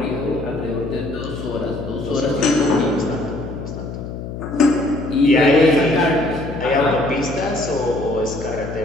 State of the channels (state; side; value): noise; left; hum, 8 dB below the sound